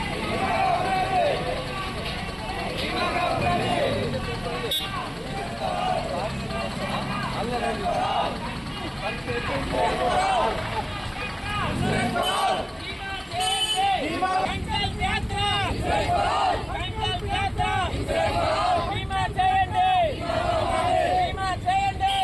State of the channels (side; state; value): both; identical; correlation 1.00